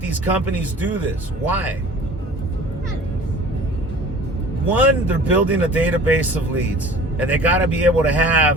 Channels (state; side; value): normal; both; correlation 0.45